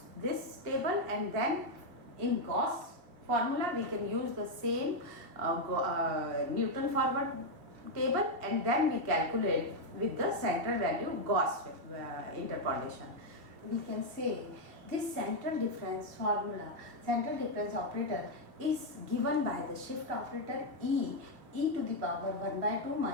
this table, and then in Gauss formula we can use the same Newton forward table, and then we calculate with the central value Gauss interpolation. We can say this central difference formula, central difference operator, is given by the shift operator e to the power 1 by 2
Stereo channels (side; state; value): left; late; 2.7 ms